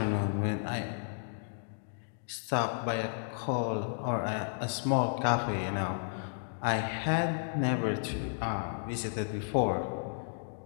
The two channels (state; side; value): silent; right; digital silence